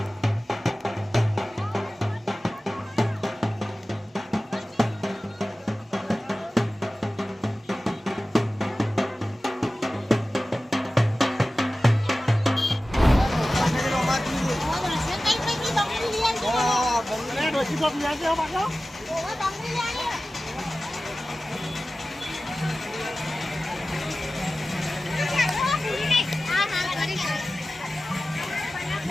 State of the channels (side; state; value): both; normal; correlation 0.96